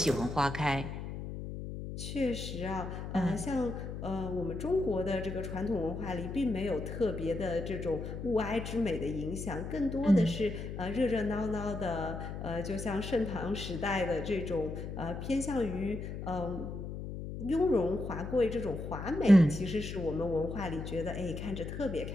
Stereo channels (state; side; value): noise; left; hum, 7 dB below the sound